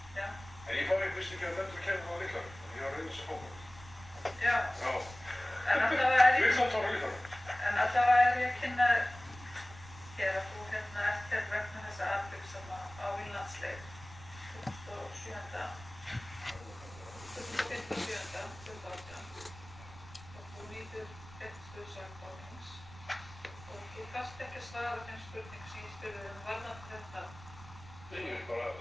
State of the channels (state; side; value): noise; right; rumble, 18 dB below the sound